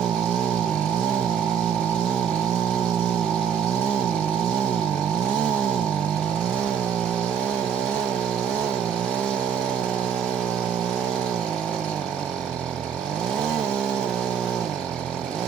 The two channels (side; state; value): left; quieter; 7.9 dB